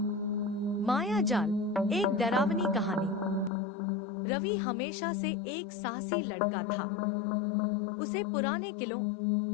माया जाल, एक डरावनी कहानी। रवि हमेशा से एक साहसी लड़का था। उसे पुराने किलों,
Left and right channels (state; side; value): drops out; right; at 3.5 s